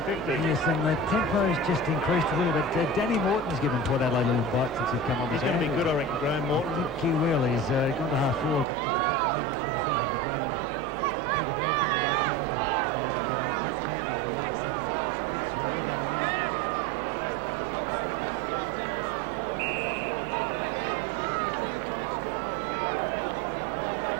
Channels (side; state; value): left; drops out; at 8.7 s